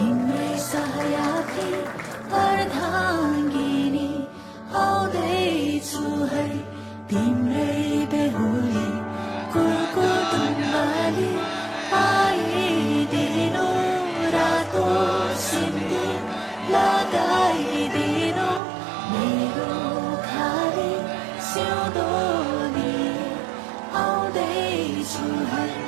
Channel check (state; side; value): drops out; left; at 18.6 s